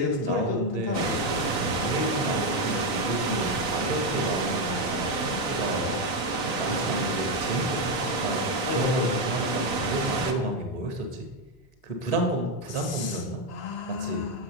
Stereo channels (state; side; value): late; right; 3.9 ms